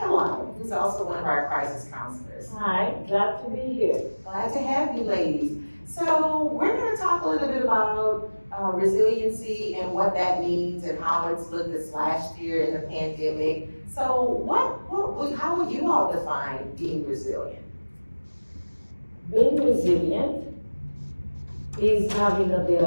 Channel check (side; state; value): both; inverted; correlation -1.00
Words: who's also one of our crisis counselors. Hi, glad to be here. Glad to have you ladies. So we're going to talk a little bit about resiliency and what that means and how it's looked this last year in the pandemic. So how would you all define being resilient? Being resilient is having